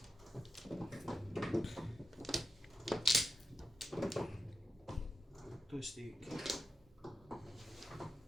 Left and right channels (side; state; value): both; normal; correlation 0.90